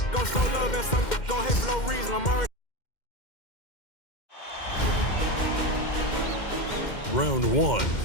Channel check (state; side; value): late; right; 2.1 ms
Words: gon' show love and some gon' hate for no reason. I'm already. Round one